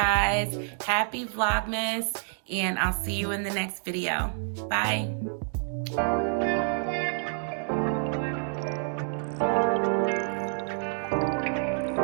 Happy Vlogmas, and I'll see you in the next video. Bye.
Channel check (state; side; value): silent; left; 59 dB below the other